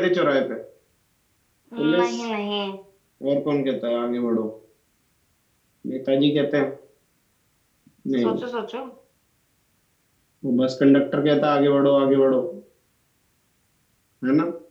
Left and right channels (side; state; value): both; identical; correlation 1.00